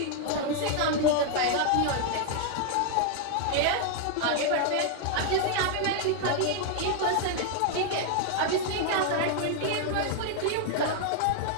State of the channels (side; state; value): both; different; correlation 0.00